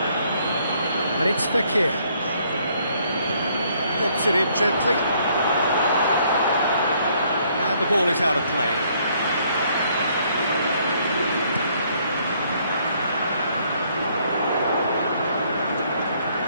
And it's Fekir. Lobs it in gently. And the ball is out of play.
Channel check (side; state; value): both; inverted; correlation -0.66